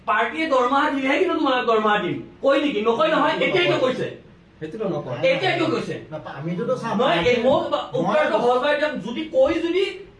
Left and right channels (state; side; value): identical; both; correlation 1.00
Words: পাৰ্টিয়ে দৰমহা দিলেহে কিন্তু তোমালোক দৰমহা দিম কয় নেকি নকয় নহয় এতিয়াইতো কৈছে সেইটোতো নকয় এতিয়াইতো কৈছে আমিতো চাম নহয় এই মোক উত্তৰটো সহজভাৱে দিয়ক যদি কৈ যদি